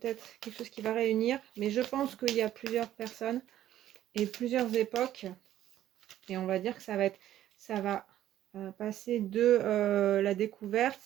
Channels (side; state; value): left; quieter; 12.4 dB